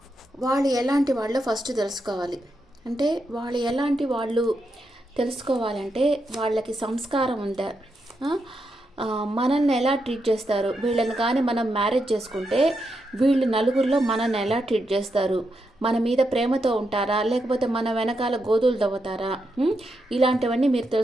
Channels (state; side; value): normal; both; correlation 0.84